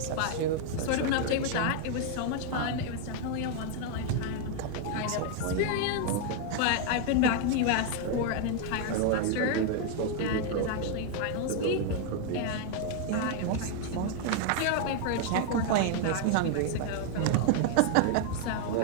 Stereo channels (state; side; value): different; both; correlation 0.00